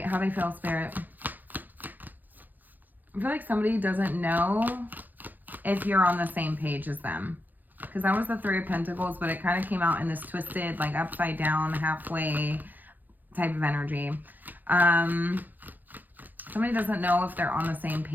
how they feel, Spirit? I feel like somebody doesn't know if you're on the same page as them. Because that was the Three of Pentacles, but it kind of came out in this twisted, like upside down, halfway type of energy. Somebody doesn't know if they're on the same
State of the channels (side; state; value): left; late; 0.085 ms